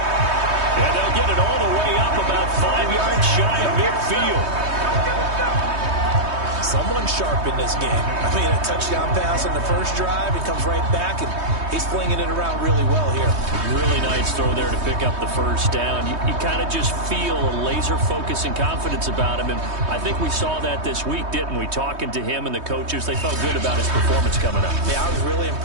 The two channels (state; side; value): late; left; 3.2 ms